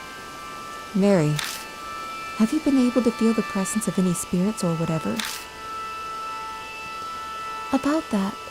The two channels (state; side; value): identical; both; correlation 1.00